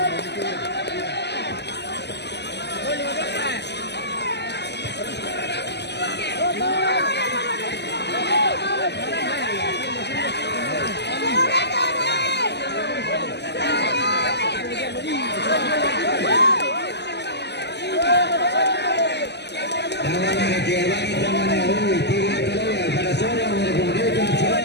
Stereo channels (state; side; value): late; right; 0.50 ms